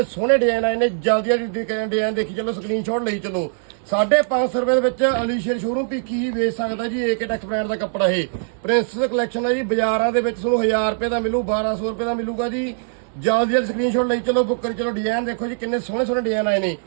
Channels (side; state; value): left; silent; digital silence